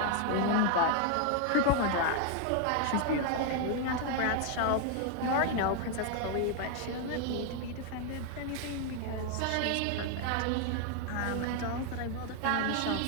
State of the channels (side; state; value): both; different; correlation 0.00